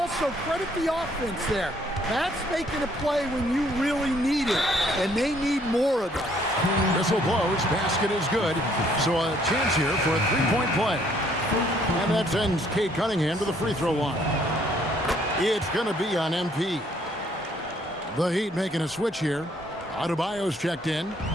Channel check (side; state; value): both; normal; correlation 0.65